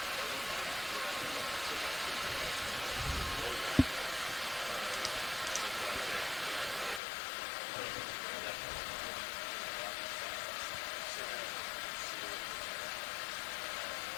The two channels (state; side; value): drops out; right; at 7.0 s